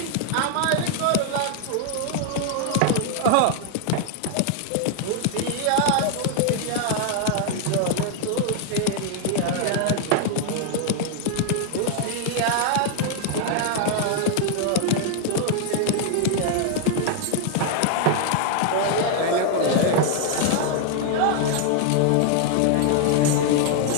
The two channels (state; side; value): different; both; correlation 0.00